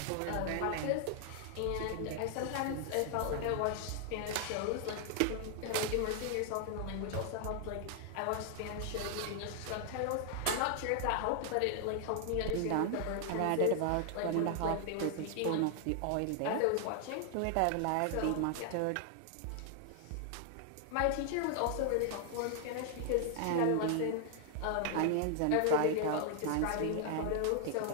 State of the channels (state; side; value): different; both; correlation 0.00